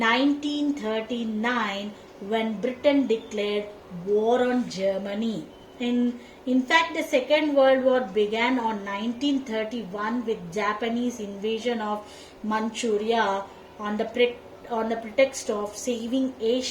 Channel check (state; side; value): identical; both; correlation 1.00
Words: when Britain declared war on Germany. In fact, the Second World War began on 1931 with Japanese invasion of Manchuria on the pretext of saving